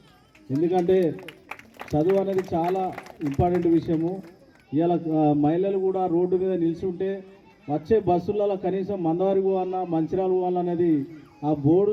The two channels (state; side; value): identical; both; correlation 1.00